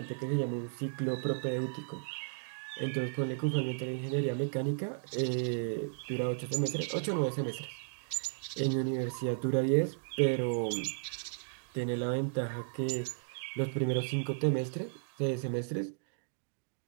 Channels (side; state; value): left; silent; digital silence